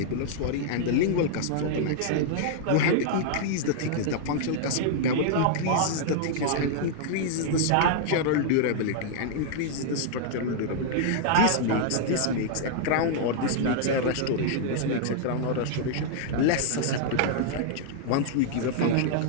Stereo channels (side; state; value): both; different; correlation -0.01